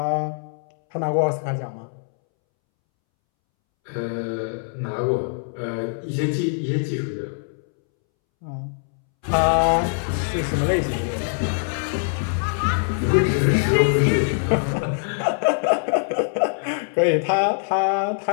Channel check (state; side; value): silent; right; 63 dB below the other